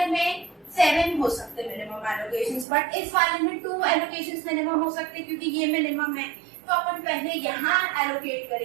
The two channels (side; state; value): left; drops out; at 2.7 s